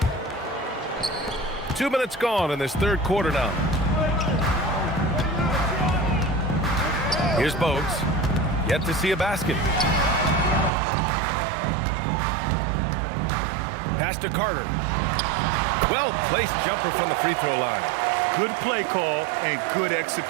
Two minutes gone in this third quarter now. Here's Bogues. Yet to see a basket. Pass to Carter. Well-placed jumper from the free throw line. Good play call and good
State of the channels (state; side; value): drops out; left; at 10.7 s